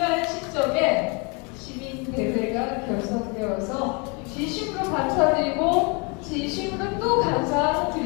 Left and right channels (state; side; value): quieter; right; 31.7 dB